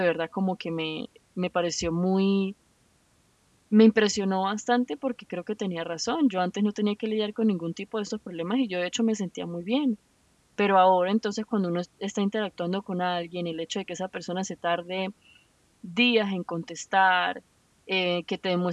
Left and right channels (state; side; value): identical; both; correlation 1.00